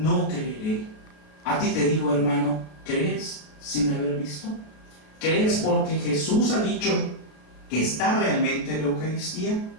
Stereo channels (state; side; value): late; right; 33 ms